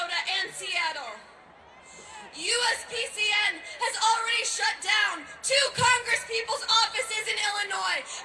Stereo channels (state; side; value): identical; both; correlation 1.00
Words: and Seattle. USPCN has already shut down 2 congresspeople's offices in Illinois,